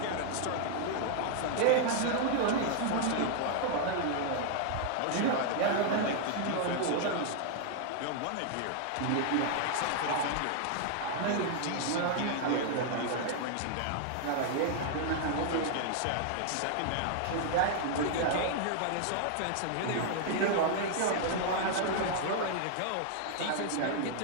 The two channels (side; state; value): both; different; correlation 0.00